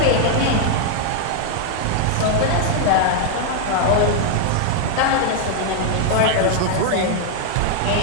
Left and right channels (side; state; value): both; different; correlation 0.00